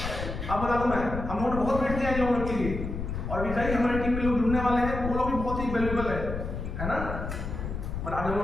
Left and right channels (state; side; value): noise; left; rumble, 5 dB below the sound